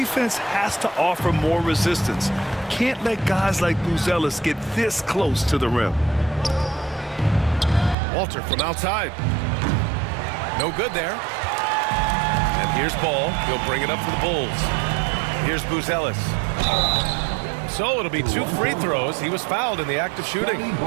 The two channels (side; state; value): left; drops out; at 8.0 s